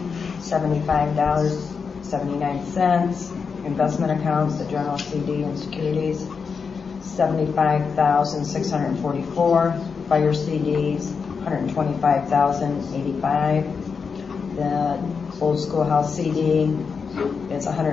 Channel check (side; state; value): right; quieter; 5.6 dB